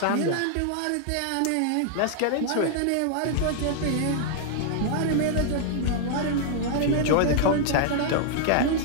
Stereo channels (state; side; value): different; both; correlation 0.00